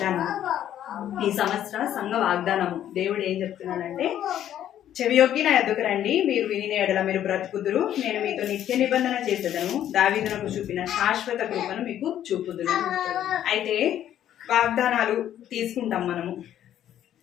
ఈ సంవత్సర సంఘ వాగ్దానము. దేవుడు ఏం చెప్తున్నాడంటే, చెవియొగ్గి నా యొద్దకు రండి, మీరు వినిన ఎడల మీరు బ్రతుకుదురు. నేను మీతో నిత్య నిబంధన చేసేదను, దావీదునకు చూపిన శాశ్వత కృపను మీకు చూపుదును. అయితే వాగ్దానాలు తీసుకుంటాం మనము.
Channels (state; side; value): quieter; right; 11.1 dB